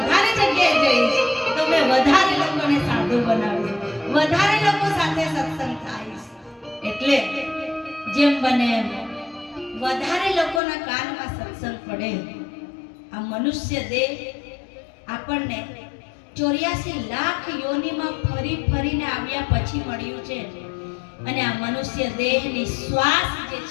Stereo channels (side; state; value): right; drops out; at 10.6 s